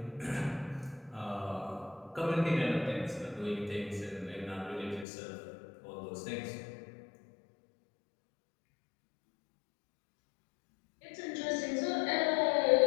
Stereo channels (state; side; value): drops out; right; at 5.1 s